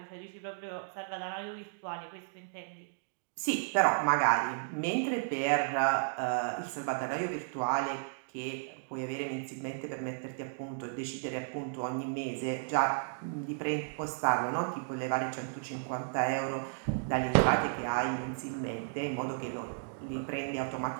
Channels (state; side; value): silent; left; digital silence